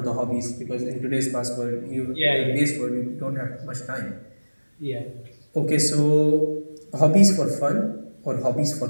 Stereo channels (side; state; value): both; inverted; correlation -1.00